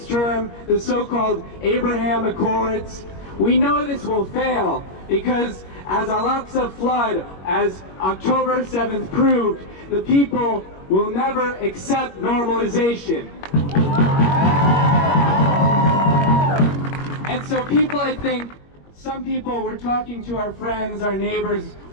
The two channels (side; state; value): right; late; 21 ms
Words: term, the so-called Abraham Accords. We know this will fail because as Al-Aqsa flood, as October 7th proved, the people will never accept normalization. And so people, I think, some people, we're talking to our friends, our neighbors,